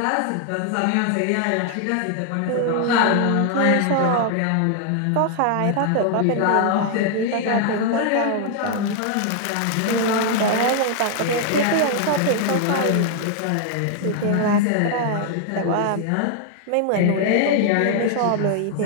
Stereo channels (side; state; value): both; different; correlation 0.00